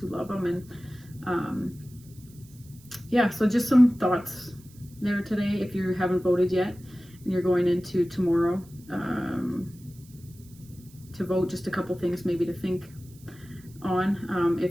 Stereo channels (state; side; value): noise; right; hiss, 25 dB below the sound